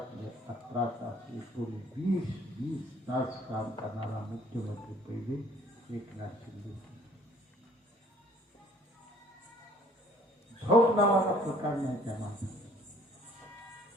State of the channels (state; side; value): normal; both; correlation 0.57